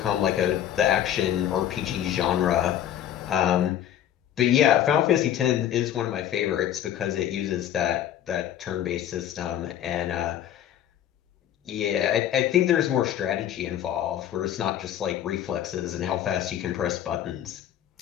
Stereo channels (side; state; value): right; quieter; 10.9 dB